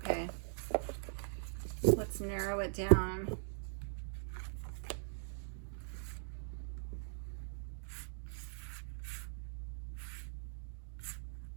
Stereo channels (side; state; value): left; silent; digital silence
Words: Let's narrow it down.